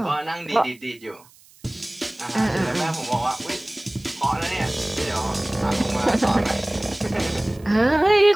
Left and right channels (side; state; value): right; noise; hiss, 27 dB below the sound